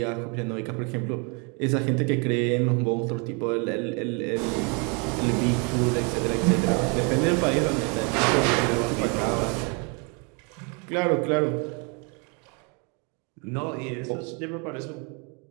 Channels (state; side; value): quieter; left; 34.0 dB